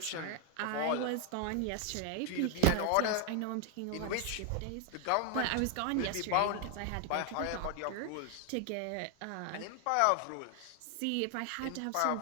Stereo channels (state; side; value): different; both; correlation 0.00